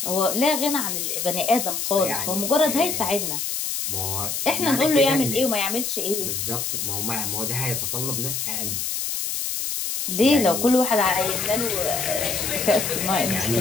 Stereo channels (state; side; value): noise; left; hiss, 2 dB below the sound